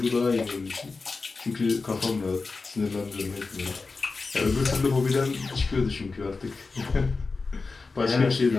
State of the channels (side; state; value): right; quieter; 4.1 dB